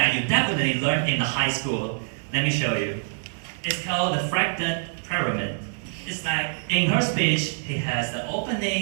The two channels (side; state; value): left; silent; digital silence